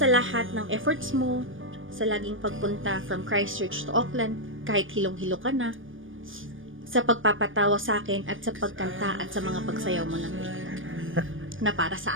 lahat ng efforts mo, sa laging pagpunta from Christchurch to Auckland, kahit hilong-hilo ka na, sa pagpapatawa sa akin at sa pagkanta at sa mga pagsayaw mo ng guitar, na para sa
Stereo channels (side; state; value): left; late; 0.58 ms